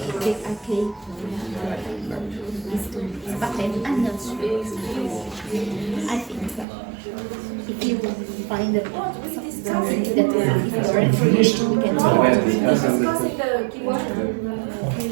I think if you find that something that will be for information, we can take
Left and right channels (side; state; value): left; drops out; at 6.7 s